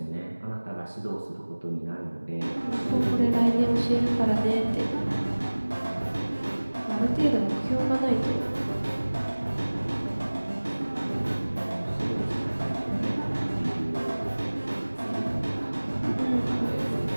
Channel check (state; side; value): inverted; both; correlation -1.00